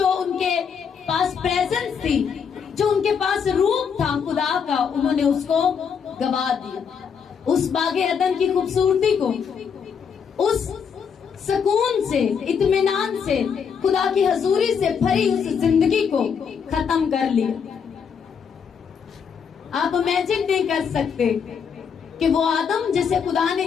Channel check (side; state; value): right; quieter; 6.7 dB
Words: ان کے پاس پریزنس تھی، جو ان کے پاس روپ تھا خدا کا، انہوں نے اس کو گوا دیا. اس باغ عدن کی خوبصورتی کو، اس سکون سے، اطمینان سے، خدا کی حضوری سے بھری اس زندگی کو ختم کر لیا. آپ امیجن نہیں کر سکتے کہ وہ آدم جسے خدا نے،